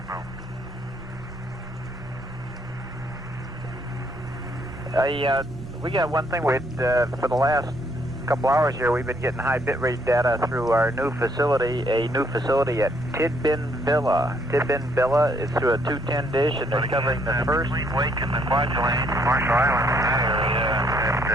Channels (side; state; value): right; noise; rumble, 19 dB below the sound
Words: know. We got one thing. For the last couple hours here, we've been getting high bitrate data through our new facility, a new facility at Tidbin Villa. Tidbin Villa is through a 210 dish, and they're covering the first... Between Wake and the Kwajalein, Marshall Islands, in that